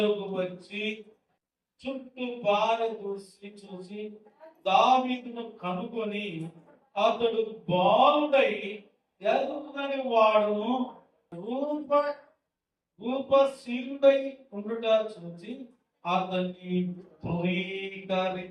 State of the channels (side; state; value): both; identical; correlation 1.00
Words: వచ్చి చుట్టూ చూసి దావీదును కనుగొని అతడు బాలుడై ఎదుగునని వాడును రూపశీలుడై ఉండుట చూసి అతన్ని